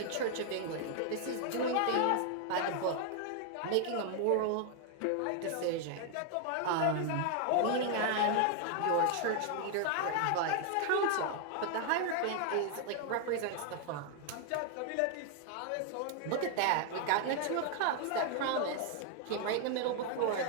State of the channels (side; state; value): both; different; correlation 0.00